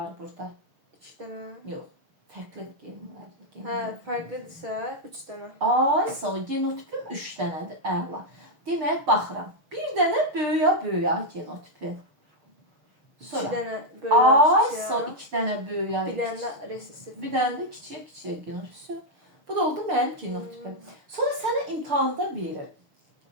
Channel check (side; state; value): left; late; 6.4 ms